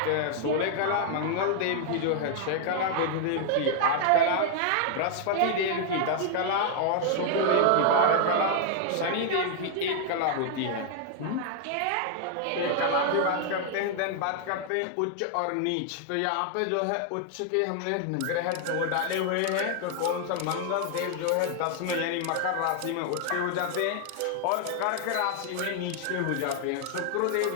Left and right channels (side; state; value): both; different; correlation 0.00